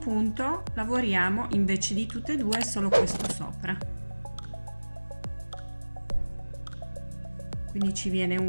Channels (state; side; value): inverted; both; correlation -1.00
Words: lavoriamo invece di tutte e due solo questo sopra, quindi ci viene